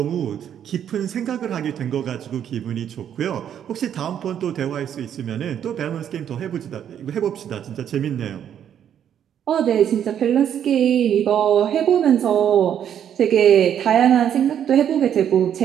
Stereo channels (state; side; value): quieter; left; 9.4 dB